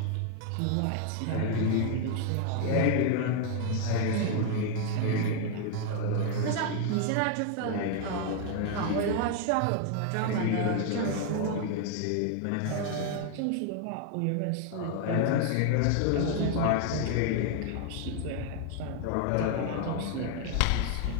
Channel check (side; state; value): both; different; correlation 0.00